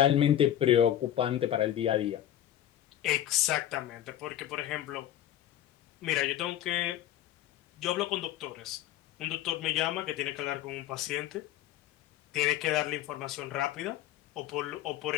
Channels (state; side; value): quieter; right; 11.9 dB